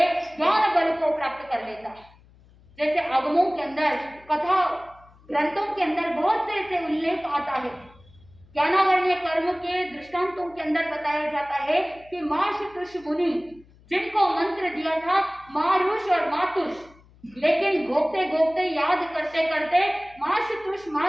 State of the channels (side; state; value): left; noise; hum, 27 dB below the sound